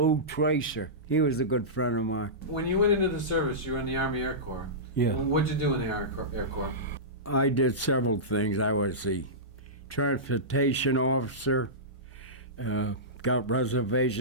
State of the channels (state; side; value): normal; both; correlation -0.17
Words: Tracer. He was a good friend of mine. When you went into the service, you were in the Army Air Corps. Yeah. What'd you do in the Air Corps? I did several things. I was the transportation officer, got